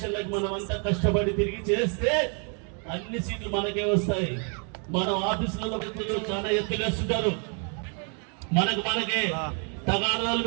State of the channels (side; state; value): left; quieter; 39.9 dB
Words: మనం అంతా కష్టపడి తిరిగి చేస్తే అన్ని సీట్లు మనకే వస్తాయి. మనం ఆఫీసులలో చాలా ఎత్తులు వేస్తుంటారు, మనకే తగాదాలు